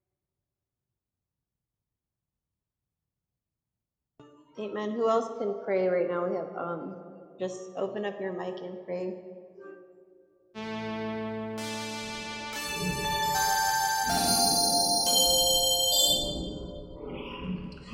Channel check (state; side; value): identical; both; correlation 1.00